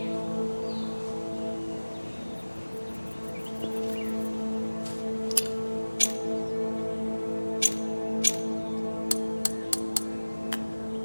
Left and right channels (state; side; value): inverted; both; correlation -1.00